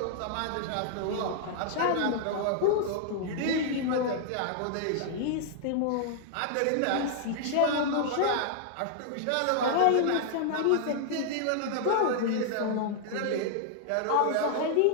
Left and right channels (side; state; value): both; different; correlation -0.01